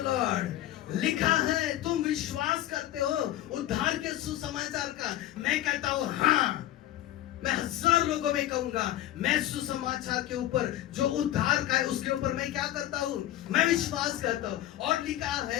Lord. लिखा है, तुम विश्वास करते हो उद्धार के सुसमाचार का? मैं कहता हूं हाँ। मैं 1000 लोगों में कहूंगा, मैं सुसमाचार के ऊपर जो उद्धार का है उसके ऊपर मैं क्या करता हूं? मैं विश्वास करता हूं। और लिखा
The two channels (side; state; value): right; quieter; 13.9 dB